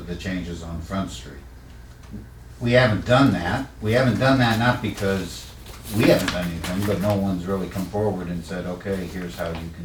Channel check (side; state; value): both; identical; correlation 1.00